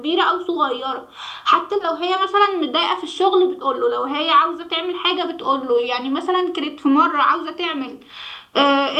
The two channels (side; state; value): both; identical; correlation 1.00